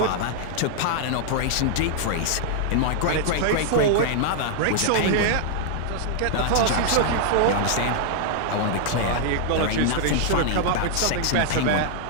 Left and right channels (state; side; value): different; both; correlation -0.01